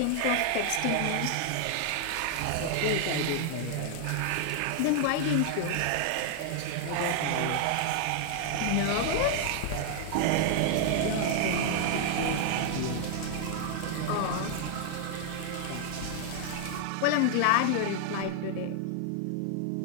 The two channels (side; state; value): both; different; correlation 0.00